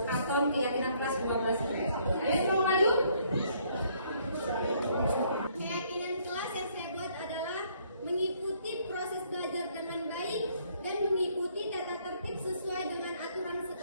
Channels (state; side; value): inverted; both; correlation -0.66